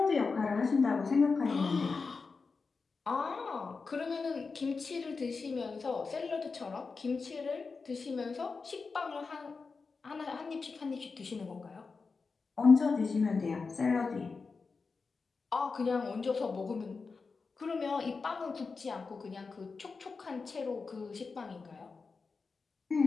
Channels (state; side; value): quieter; right; 4.6 dB